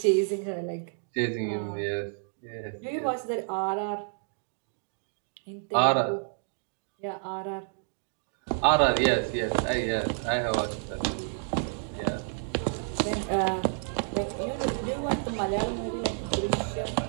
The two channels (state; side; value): silent; left; digital silence